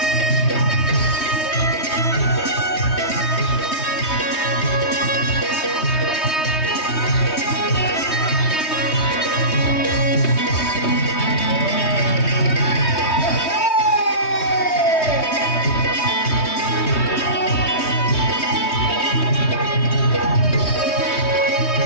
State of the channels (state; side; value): late; right; 3.2 ms